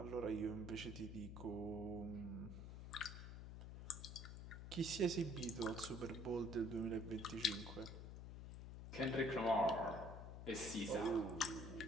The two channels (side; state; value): left; noise; hum, 9 dB below the sound